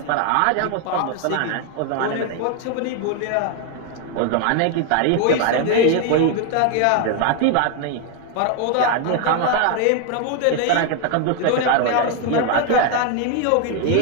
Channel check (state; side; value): different; both; correlation 0.01